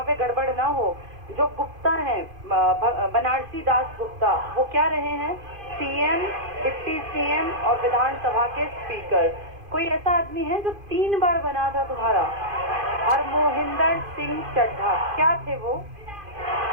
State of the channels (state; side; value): late; left; 2.5 ms